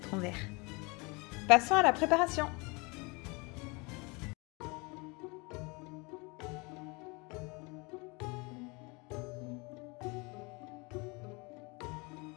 vert. Passons à la préparation.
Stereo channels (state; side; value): quieter; right; 27.8 dB